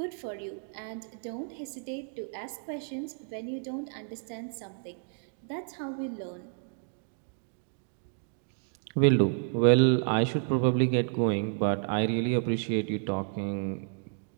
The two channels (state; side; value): silent; left; 57 dB below the other